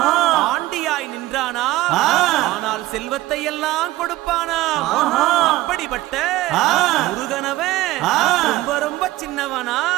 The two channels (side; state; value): left; quieter; 17.1 dB